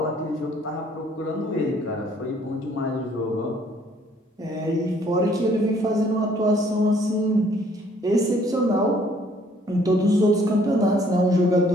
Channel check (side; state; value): both; normal; correlation 0.61